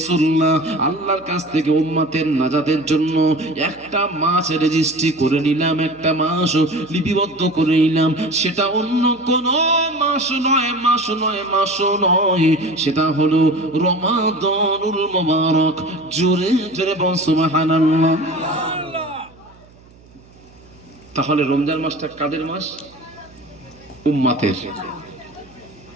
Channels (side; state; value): right; noise; hum, 26 dB below the sound